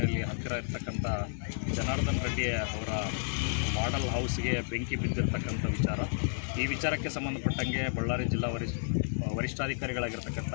ಹತ್ತಿರ ಇರ್ತಕ್ಕಂಥ ಜನಾರ್ದನ್ ರೆಡ್ಡಿ ಅವರ ಮಾಡೆಲ್ ಹೌಸ್ಗೆ ಬೆಂಕಿ ಬಿದ್ದಿರ್ತಕ್ಕಂಥ ವಿಚಾರ. ಈ ವಿಚಾರಕ್ಕೆ ಸಂಬಂಧಪಟ್ಟಂಗೆ ಬಳ್ಳಾರಿ ಜಿಲ್ಲಾ ವರಿಷ್ಠಾಧಿಕಾರಿಗಳಾಗಿರ್ತಕ್ಕಂಥ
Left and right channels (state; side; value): silent; right; digital silence